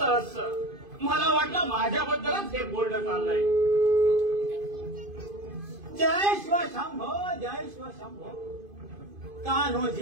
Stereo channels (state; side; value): late; left; 2.5 ms